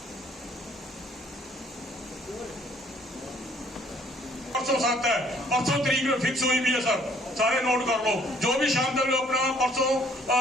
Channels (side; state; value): both; normal; correlation 0.61